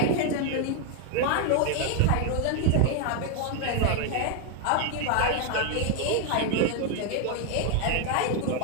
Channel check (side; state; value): both; different; correlation 0.00